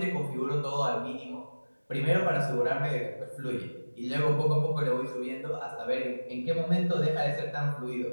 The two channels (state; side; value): inverted; both; correlation -1.00